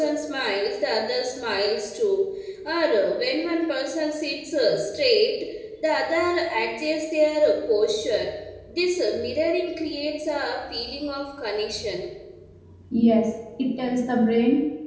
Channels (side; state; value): both; identical; correlation 1.00